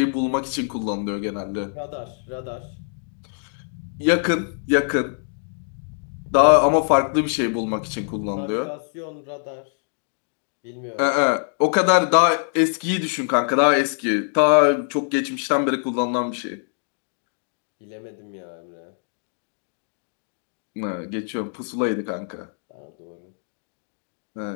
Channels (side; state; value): right; silent; 62 dB below the other